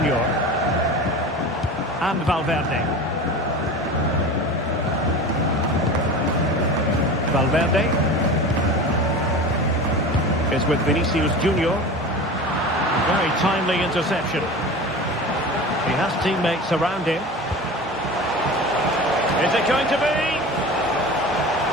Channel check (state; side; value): normal; both; correlation 0.33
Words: And Valverde. Valverde is with Vinicius Junior. Very timely interception. He has teammates around him. Is it going to be?